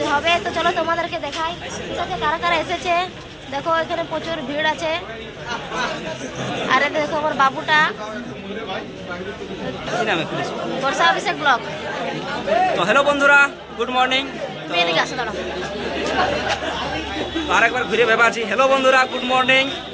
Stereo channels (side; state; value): both; identical; correlation 1.00